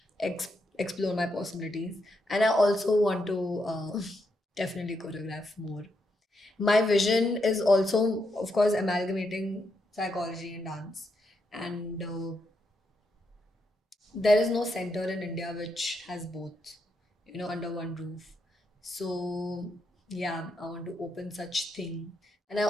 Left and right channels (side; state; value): both; normal; correlation 0.81